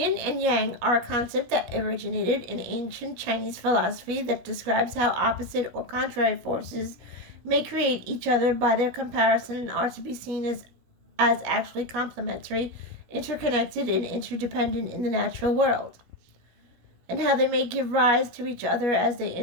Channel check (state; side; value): late; left; 16 ms